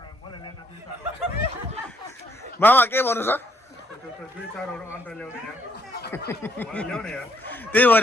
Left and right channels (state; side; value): normal; both; correlation 0.70